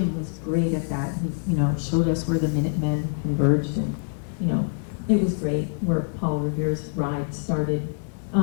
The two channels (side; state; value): right; silent; digital silence